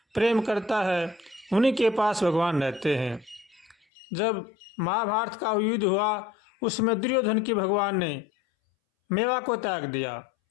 प्रेम करता है उन्हीं के पास भगवान रहते हैं। जब महाभारत का युद्ध हुआ उसमें दुर्योधन की भगवान ने मेवा को त्याग दिया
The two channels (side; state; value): right; drops out; at 3.8 s